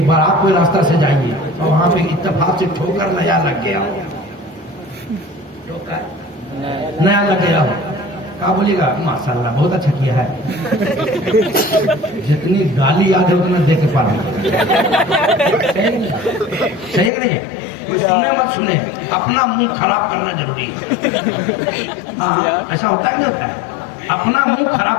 بار آپ کوئی راستہ سے جائیے اور وہاں پہ اتفاق سے ٹھوکر نیا لگ گیا ہو, نیا لگ گیا ہو, کہا بولیے گا ماشاءاللہ بہت اچھا کیا ہے. جتنی گالی یاد ہے اتنا دے کے پانا. صحیح نہیں ہے. کوئی سنے مت سنے, اپنا منہ خراب کرنا ضروری ہے. ایسا ہوتا ہے نہیں ہوتا ہے. اپنا منہ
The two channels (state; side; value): drops out; right; at 17.1 s